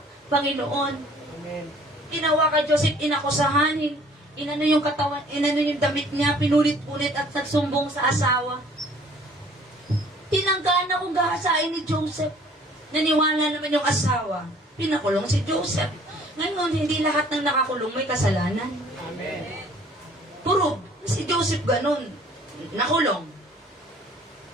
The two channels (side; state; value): both; normal; correlation 0.55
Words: Panginoon. Amen. Ginawa kay Joseph, inakusahan. Inano yung katawan, inano yung damit niya, pinulit-ulit at nagsumbong sa asawa. Tinanggaan na kung gahasain ni Joseph. Naniwala naman yung asawa. Pinakulong si Joseph. Ngayon, hindi lahat ng nakakulong may kasalanan. Amen. Puro, si Joseph ganun. Nakulong.